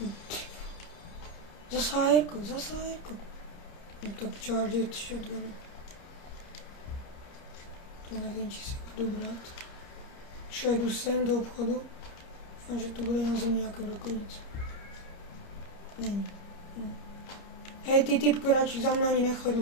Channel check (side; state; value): right; late; 30 ms